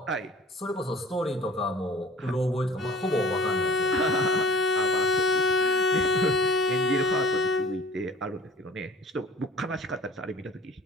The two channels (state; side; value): normal; both; correlation 0.47